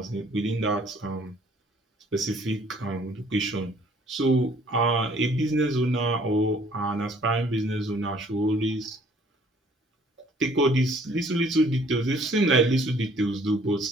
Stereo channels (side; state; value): both; normal; correlation 0.59